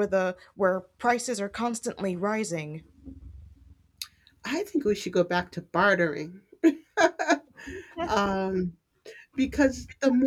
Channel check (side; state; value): both; identical; correlation 1.00